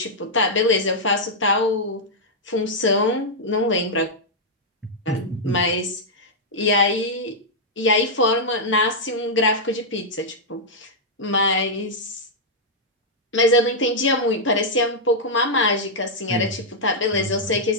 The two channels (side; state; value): both; normal; correlation -0.06